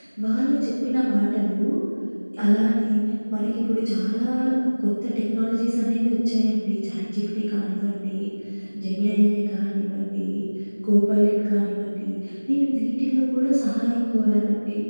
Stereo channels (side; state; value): both; inverted; correlation -1.00